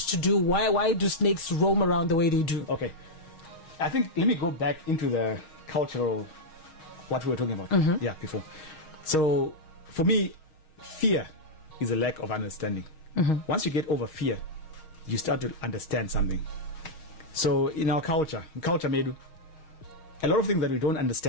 do? Why do snakes roam around the way they do? Okay. I think, let me go back into the cultural, what we were talking about before. So for me, fear is a lack of understanding. Mm-hmm. Once you get over fear, you start to understand something. So in our culture Medu, a lot of things that we don't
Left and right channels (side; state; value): right; late; 6.4 ms